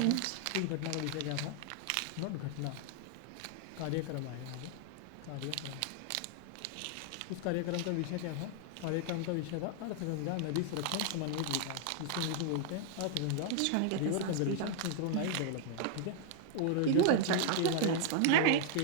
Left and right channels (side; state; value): both; different; correlation 0.00